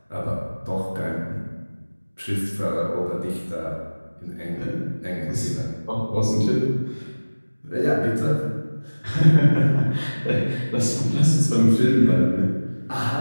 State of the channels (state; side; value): inverted; both; correlation -1.00